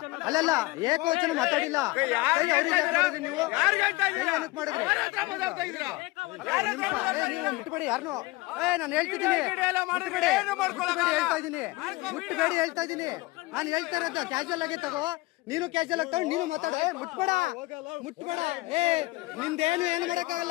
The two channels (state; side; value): quieter; right; 21.5 dB